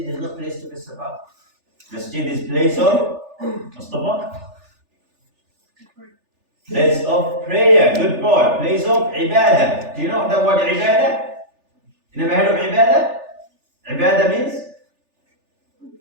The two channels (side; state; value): left; late; 3.4 ms